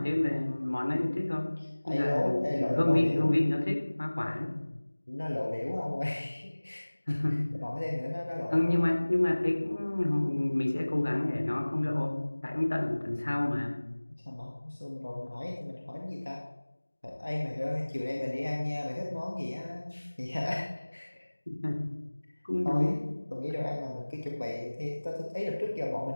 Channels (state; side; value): inverted; both; correlation -1.00